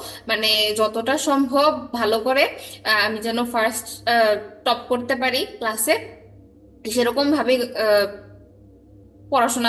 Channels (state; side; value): identical; both; correlation 1.00